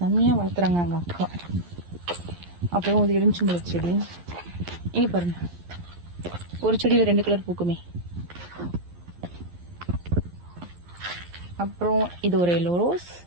வளர்த்துறாங்க எங்கள் அக்கா. அப்புறம் இது எலுமிச்சம்பழ செடி. இங்கே பாருங்கள், ஒரு செடியில் 2 கலர் பூக்குமே. அப்புறம் இது ஒரு எல்லோ ரோஸ்.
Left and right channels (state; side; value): late; left; 11 ms